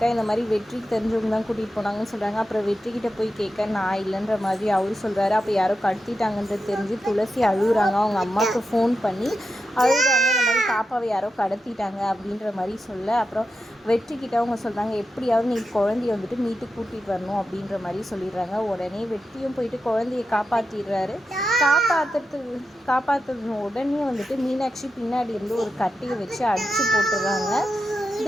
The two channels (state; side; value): normal; both; correlation 0.88